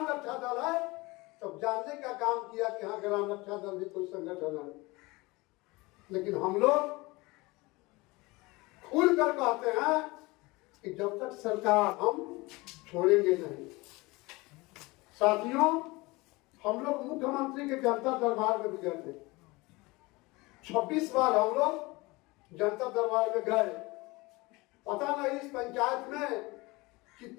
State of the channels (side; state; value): right; quieter; 23.1 dB